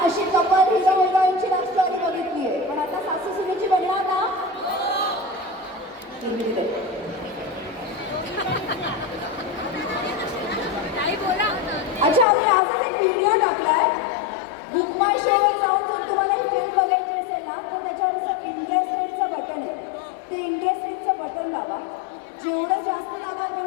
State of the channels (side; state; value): right; drops out; at 12.2 s